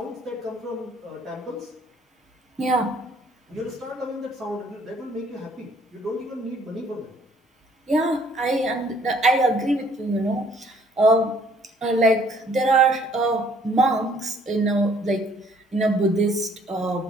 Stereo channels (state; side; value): normal; both; correlation 0.60